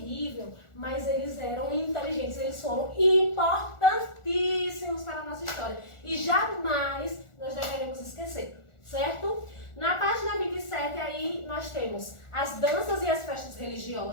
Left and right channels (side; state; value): right; late; 1.4 ms